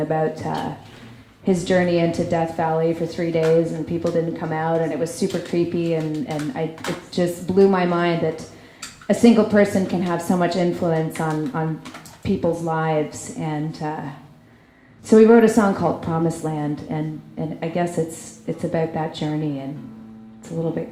his journey into Death Valley for 3 days, and people didn't come out, and it was super creepy, and it just blew my mind that a single person can have so much influence on people's lives. And so we wrote a song called Promised Land, and I guess it's about that journey, and it's a little bit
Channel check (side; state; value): both; identical; correlation 1.00